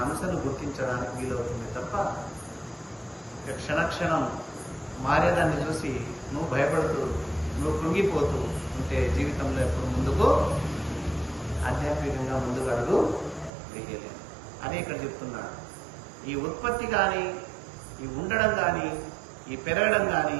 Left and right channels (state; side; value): drops out; left; at 13.5 s